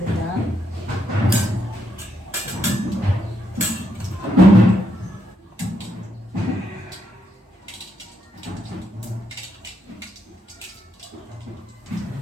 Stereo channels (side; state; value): both; normal; correlation 0.78